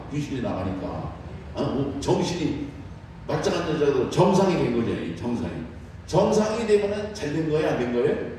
귀신이 나가니까 정신이 말짱한 여자가 정상이 된 거죠. 정상이 되면은 잘 된 거예요? 안 된 거예요?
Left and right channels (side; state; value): both; identical; correlation 1.00